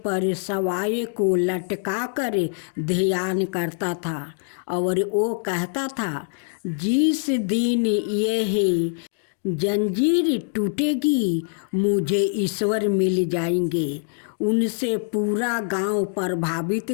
पर सवाए को लटका कर ध्यान करता था और वो कहता था, जिस दिन यह जंजीर टूटेगी मुझे ईश्वर मिल जाएंगे। उनसे पूरा गांव प्रभावित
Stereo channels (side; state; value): right; silent; digital silence